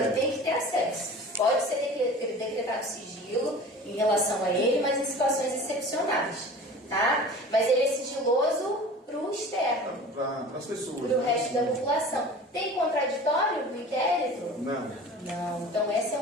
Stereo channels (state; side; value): normal; both; correlation 0.39